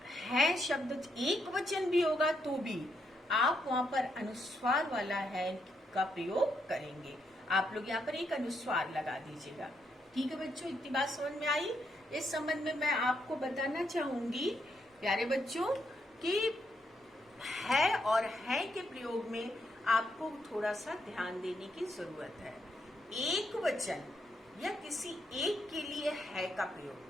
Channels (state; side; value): normal; both; correlation 0.78